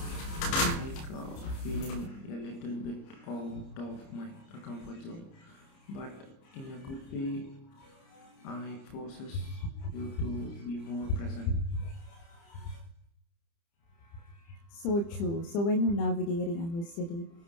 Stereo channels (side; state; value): right; late; 30 ms